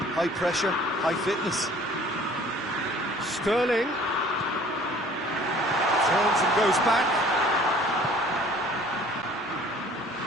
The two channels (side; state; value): both; normal; correlation 0.52